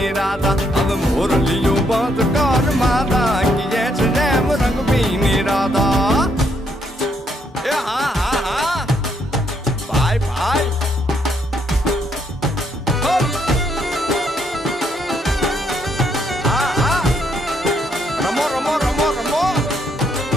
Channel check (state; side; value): normal; both; correlation 0.73